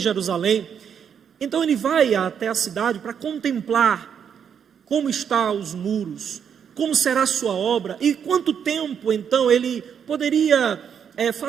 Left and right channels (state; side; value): quieter; left; 7.8 dB